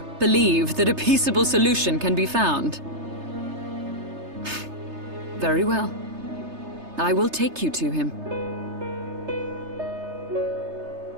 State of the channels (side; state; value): left; late; 3.3 ms